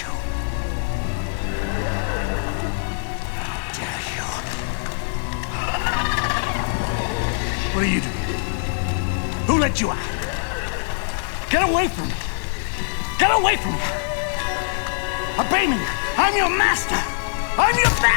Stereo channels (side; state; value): right; silent; digital silence